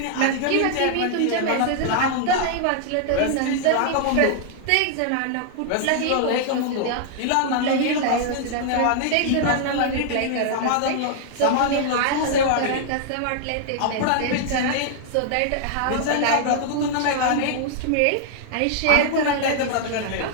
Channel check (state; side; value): different; both; correlation -0.01